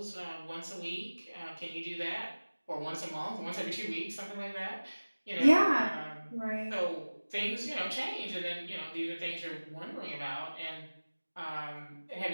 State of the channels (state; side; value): inverted; both; correlation -1.00